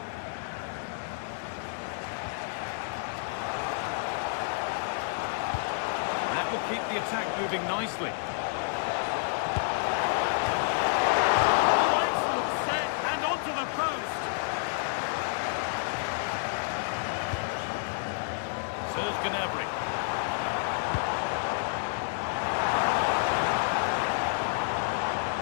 That will keep the attack moving nicely. Oh, excellent set, and onto the post. Serge Gnabry.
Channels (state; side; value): silent; right; digital silence